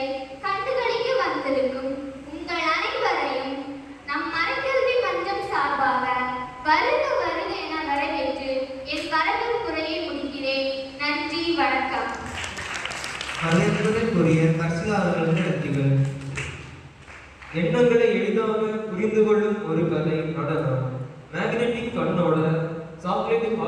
கண்டுகளிக்க வந்திருக்கும் உங்கள் அனைவரையும் நம் மரக்கல்வி மன்றம் சார்பாக வருக வருக என வரவேற்று என் வரவேற்புரையை முடிக்கிறேன். நன்றி, வணக்கம். வரவேற்புரைக்குரிய கர்ஷிகா அவர்களுக்கு நன்றிகள். எண்ணங்களை எளிதாக புரிந்து கொள்ளும் ஒரு கலை நடனம். மேக்னெட்டிக் கண்ணோட சாக்லேட்டிக்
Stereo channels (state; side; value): identical; both; correlation 1.00